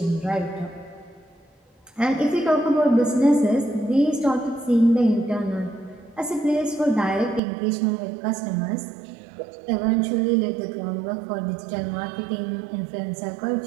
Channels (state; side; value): drops out; left; at 7.4 s